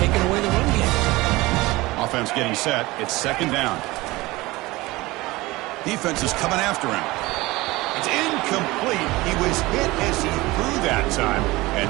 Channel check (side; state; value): left; quieter; 20.5 dB